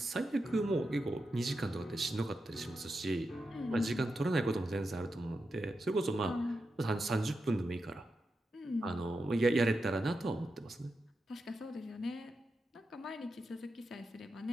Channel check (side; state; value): both; normal; correlation 0.88